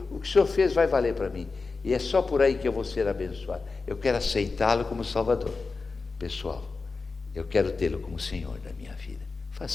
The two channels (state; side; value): quieter; right; 4.2 dB